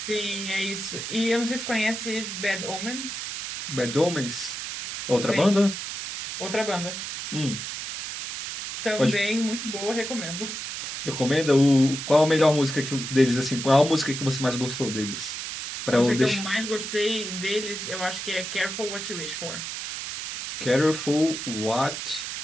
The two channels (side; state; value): right; noise; hiss, 6 dB below the sound